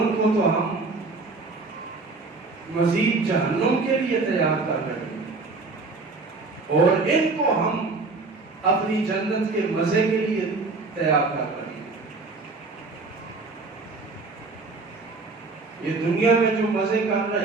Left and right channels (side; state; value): left; quieter; 3.8 dB